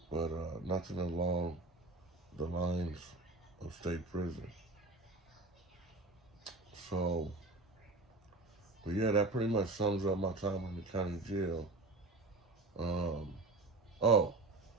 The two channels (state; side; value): quieter; left; 3.1 dB